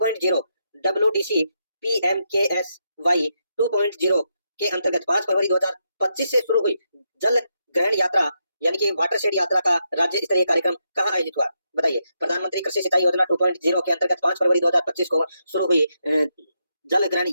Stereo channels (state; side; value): inverted; both; correlation -0.82